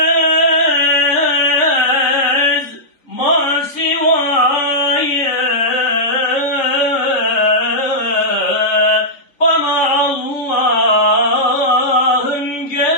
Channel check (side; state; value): right; late; 3.7 ms